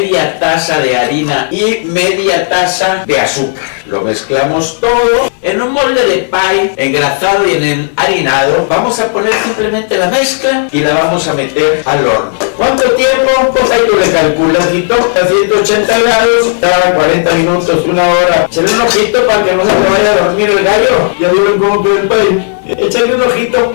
taza de harina y media taza de azúcar. Lo mezclamos todo en un molde de pie engrasado y enharinado. Vamos a poner simplemente la mezcla y la vamos a meter al horno. ¿Cuánto tiempo? Pues ahí tú le calculas, y a 180 grados, cada 40 minutos, 1 hora. Échale un ojito para que no se te vaya a dormir el gallo. Ya vieron cómo quedó el pie. Échale un ojito.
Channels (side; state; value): right; silent; 63 dB below the other